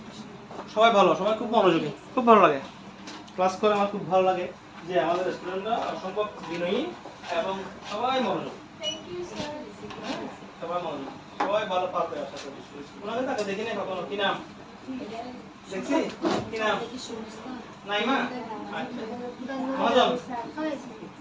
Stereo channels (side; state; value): both; identical; correlation 1.00